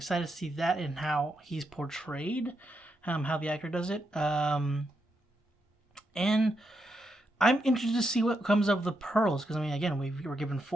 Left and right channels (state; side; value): normal; both; correlation 0.82